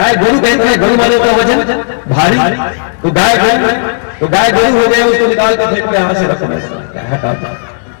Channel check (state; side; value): silent; right; digital silence